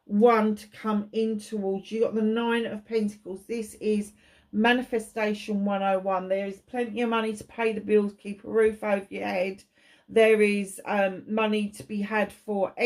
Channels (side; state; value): both; identical; correlation 1.00